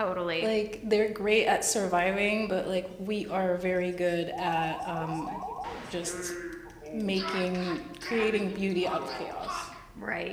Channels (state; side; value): identical; both; correlation 1.00